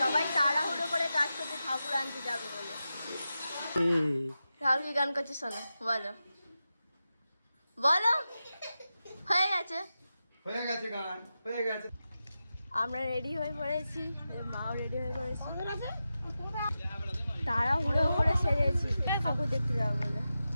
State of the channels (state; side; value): inverted; both; correlation -0.91